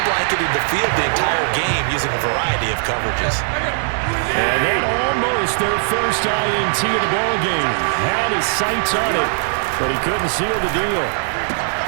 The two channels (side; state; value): left; silent; digital silence